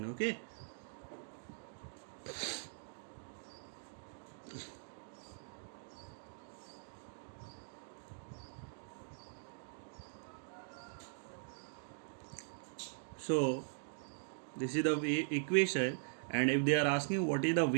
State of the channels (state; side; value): silent; left; digital silence